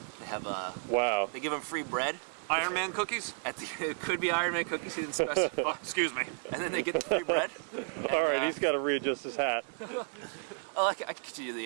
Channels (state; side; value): silent; left; 56 dB below the other